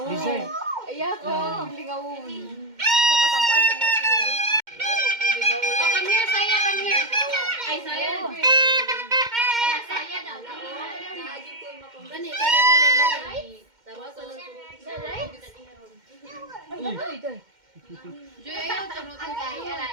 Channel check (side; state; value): left; late; 2.1 ms